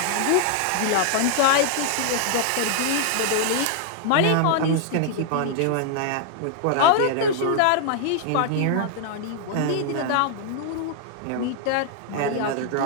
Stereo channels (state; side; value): different; both; correlation 0.00